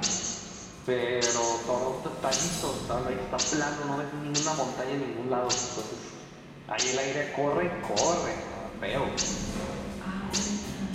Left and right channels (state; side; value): identical; both; correlation 1.00